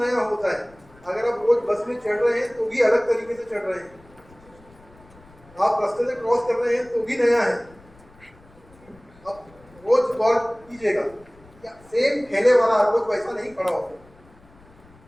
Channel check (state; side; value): noise; left; rumble, 26 dB below the sound